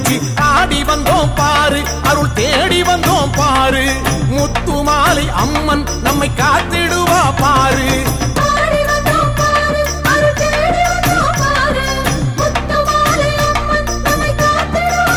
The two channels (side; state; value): both; identical; correlation 1.00